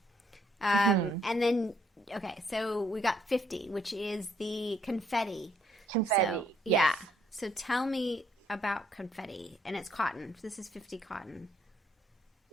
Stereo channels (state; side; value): normal; both; correlation 0.68